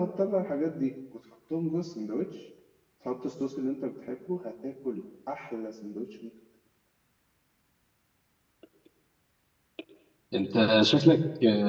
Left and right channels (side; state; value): both; identical; correlation 1.00